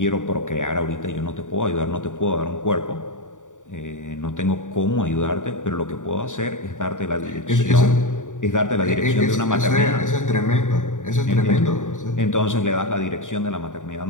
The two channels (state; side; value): late; right; 0.86 ms